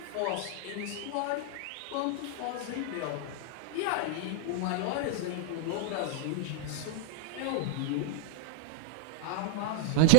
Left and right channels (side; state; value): both; different; correlation 0.00